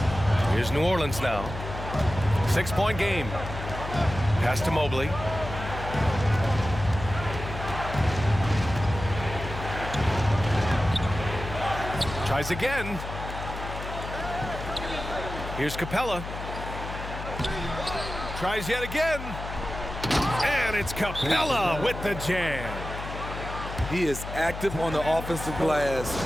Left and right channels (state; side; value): noise; left; hum, 8 dB below the sound